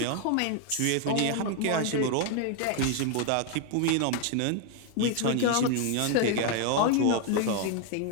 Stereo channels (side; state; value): both; different; correlation 0.01